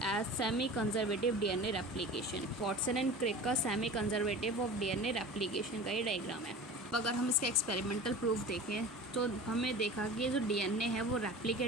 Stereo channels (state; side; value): normal; both; correlation 0.37